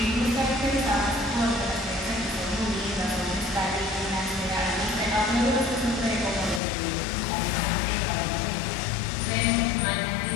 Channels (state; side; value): drops out; right; at 6.6 s